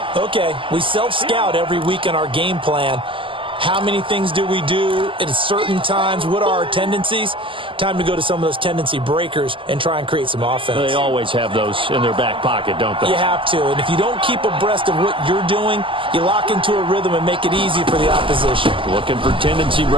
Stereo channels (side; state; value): left; late; 0.25 ms